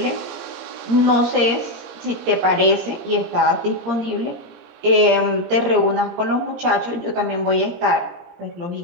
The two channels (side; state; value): left; late; 17 ms